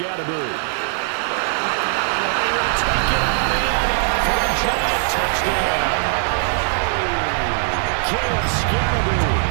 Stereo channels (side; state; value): left; silent; 57 dB below the other